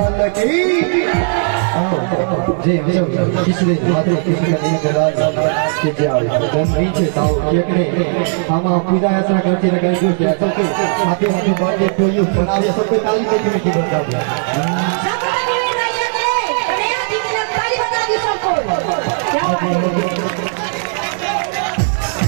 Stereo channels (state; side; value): silent; left; 66 dB below the other